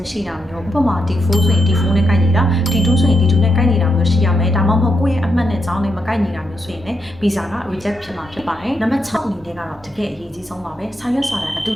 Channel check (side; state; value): both; normal; correlation 0.82